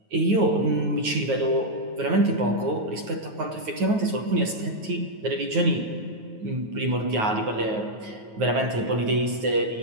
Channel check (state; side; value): late; left; 9.3 ms